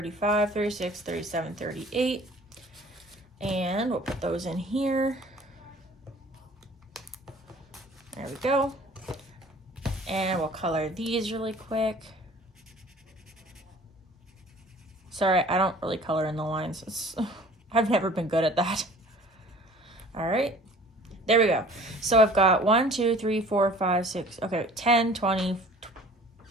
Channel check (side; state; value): both; normal; correlation 0.49